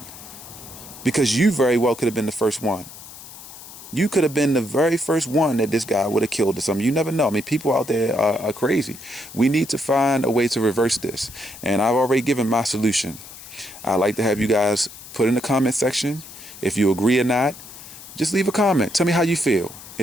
Because you very well could have been the first one. You could have been the very first one that this guy would have killed or something. You never know. I mean, people out there are crazy. We need to find a way to reverse this. And I've already given my solution. I'd like to have you guys put in the comment section if you agree or not. Just leave a comment. Tell me how you feel.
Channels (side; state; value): left; noise; hiss, 16 dB below the sound